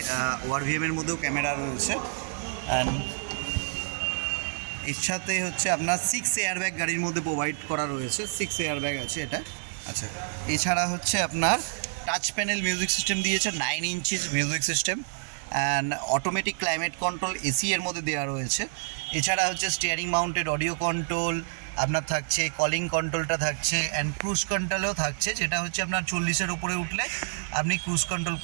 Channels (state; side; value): silent; left; digital silence